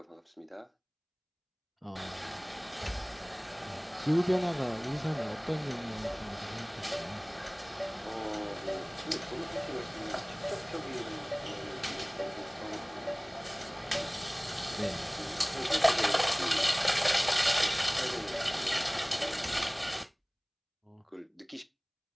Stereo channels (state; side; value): identical; both; correlation 1.00